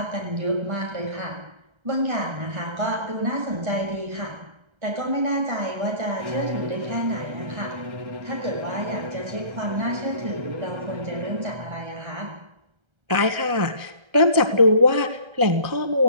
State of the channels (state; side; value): late; left; 1.3 ms